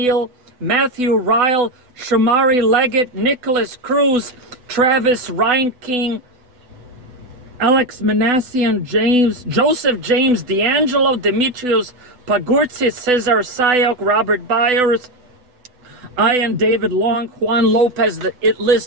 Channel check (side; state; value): left; late; 8.0 ms